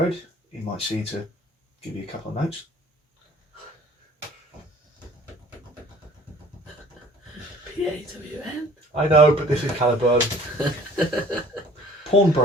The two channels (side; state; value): both; normal; correlation 0.51